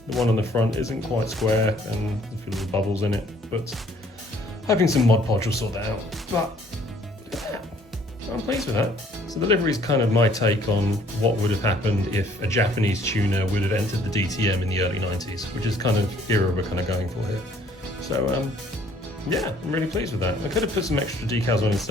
one on the front isn't quite square and there's a few little bubbles in it, but hoping some Mod Podge will sort that out. But yeah, I'm pleased with that. So the livery is kind of my take on what would have happened if a Japanese tuner would have entered the DTM in the early 90s, which is kind of era we're kind of going for here. So yeah, I'm really pleased with that. I could have put some extra decals on in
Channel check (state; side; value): normal; both; correlation 0.60